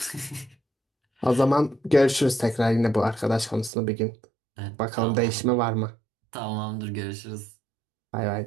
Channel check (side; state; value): left; drops out; at 3.7 s